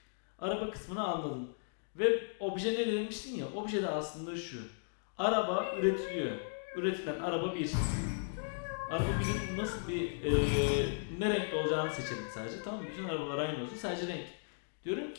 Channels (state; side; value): silent; right; digital silence